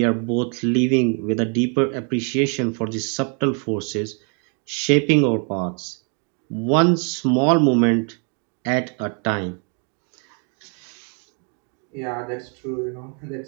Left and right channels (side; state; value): left; quieter; 39.5 dB